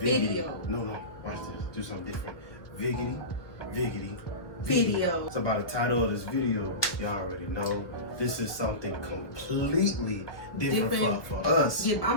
No, watch this. Do something different. Viggity. Video. So by the title of this video, y'all already know this is something completely different for us. Yeah,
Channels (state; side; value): late; right; 1.3 ms